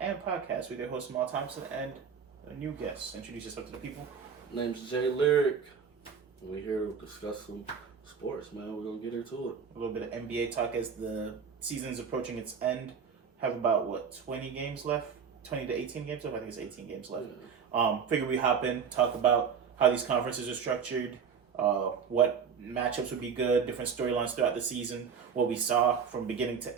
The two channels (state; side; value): quieter; left; 6.6 dB